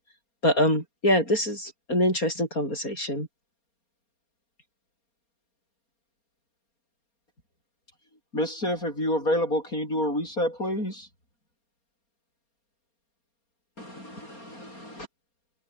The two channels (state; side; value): late; right; 4.3 ms